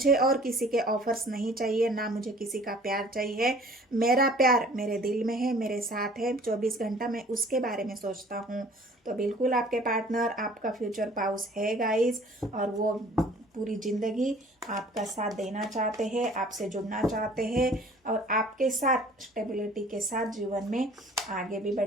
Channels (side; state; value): both; normal; correlation 0.51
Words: और किसी के ऑफर्स नहीं चाहिए, ना मुझे किसी का प्यार चाहिए, मेरा प्यार मेरे दिल में है, मेरे साथ है, 24 घंटा मैं उसके बारे में सोचता हूँ। तो बिल्कुल आपके पार्टनर आपका फ्यूचर पाउस है गाइस, और वो पूरी ज़िंदगी आपका साथ देना चाहते हैं, आपसे जुड़ना चाहते हैं, और आपके साथ स्टेबिलिटी के साथ जीवन में आगे भी